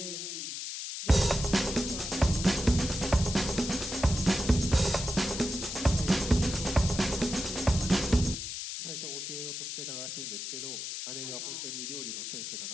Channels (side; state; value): left; noise; hiss, 6 dB below the sound